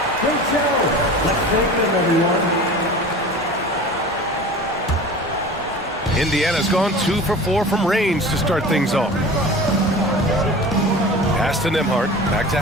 Great show. Let's thank them, everyone. Indiana's gone 2 for 4 from range to start things off. Pass to Nembhard. Back to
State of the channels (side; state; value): both; normal; correlation 0.37